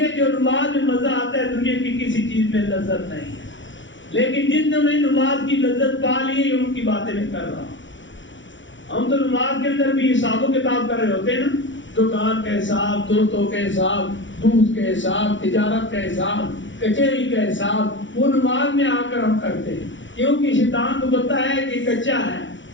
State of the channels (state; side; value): late; right; 0.55 ms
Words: جو نماز میں مزہ آتا ہے دنیا کی کسی چیز میں لذت نہیں ہے، لیکن جن نے میں نماز کی لذت پا لی ہے ان کی باتیں میں کر رہا ہوں۔ ہم تو نماز کے اندر بھی حساب و کتاب کر رہے ہوتے ہیں نا، دکان کا حساب، دوستوں کے حساب، دودھ کے حساب، تجارت کا حساب، کچہری کا حساب، وہ نماز میں آ کر ہم کرتے ہیں، کیونکہ شیطان کو پتہ ہے کہ کچا ہے،